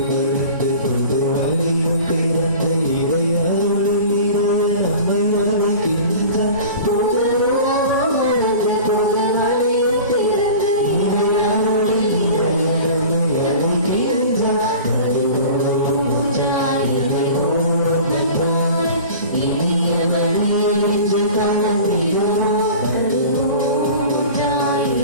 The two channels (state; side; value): inverted; both; correlation -0.39